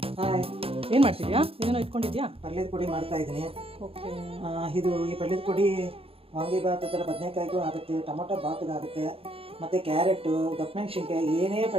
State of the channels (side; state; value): left; late; 0.27 ms